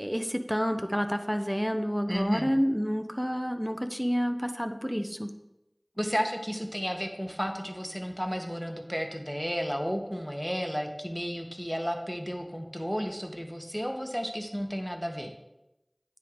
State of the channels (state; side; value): identical; both; correlation 1.00